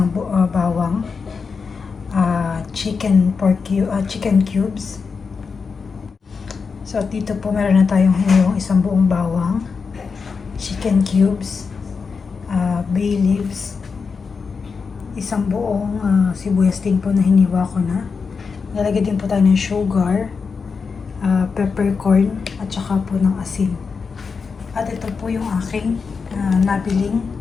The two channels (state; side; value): quieter; right; 5.2 dB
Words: bawang, chicken cubes. So, dito po meron na tayong hiniwang isang buong bawang, chicken cubes, bay leaves, isang buong sibuyas din po na hiniwa ko na. Lalagyan din po tayo ng sugar, peppercorn, at saka po ng asin. At ito po yung aking nabiling